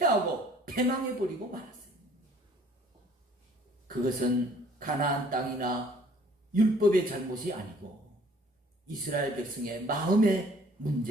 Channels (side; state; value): both; normal; correlation 0.56